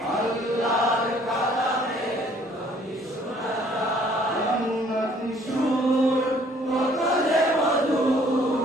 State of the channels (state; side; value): normal; both; correlation 0.59